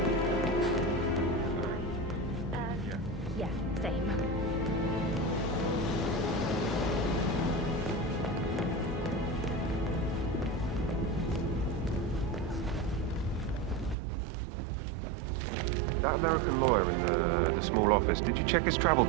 Yeah, same. That American lawyer in the small office, did you check his travel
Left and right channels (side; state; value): left; drops out; at 14.0 s